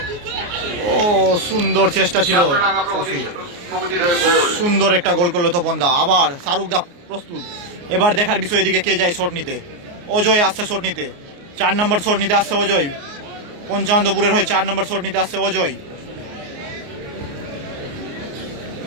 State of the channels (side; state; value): left; late; 29 ms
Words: ও সুন্দর চেষ্টা ছিল সফি, সুন্দর একটা গোল করলো তপন দা। আবার শাহরুখ দা প্রস্তুত, এবার দেখার বিষয় এদিকে কে যায় শট নিতে। অজয় আসছে শট নিতে, 4 নম্বর শট নিতে আসছে অজয়। পঞ্চানন্দপুরের হয়ে 4 নম্বর শট নিতে আসছে অজয়।